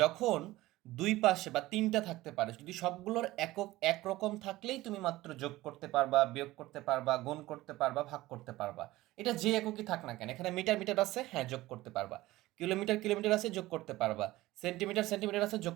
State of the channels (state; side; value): quieter; left; 17.7 dB